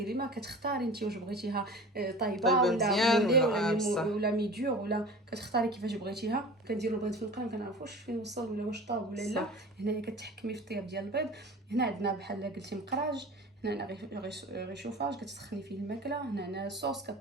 ما كتختاري انت واش بغيتيها طايبه ولا ميديور ولا كتختاري كيفاش بغيتيها. كنديروا البيض في القرن ما كنعرفوش فين وصل ولا واش طاب ولا لا. هنايا كتحكمي في الطياب ديال البيض. هنا عندنا بحال قلتي مقراج، هنا غيشوفاج كتسخني فيه الماكله. هنا صوص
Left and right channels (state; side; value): normal; both; correlation 0.38